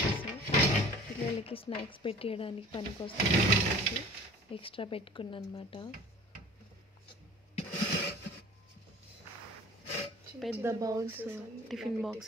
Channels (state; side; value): normal; both; correlation 0.45